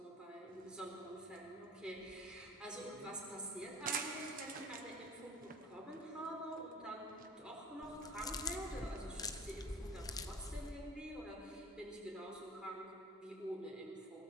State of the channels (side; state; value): both; normal; correlation 0.44